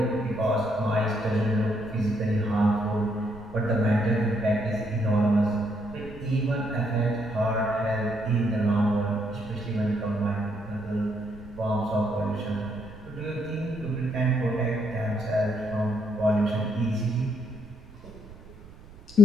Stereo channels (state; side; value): noise; right; rumble, 19 dB below the sound